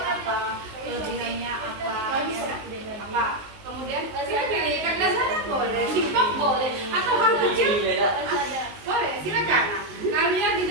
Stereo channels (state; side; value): late; left; 19 ms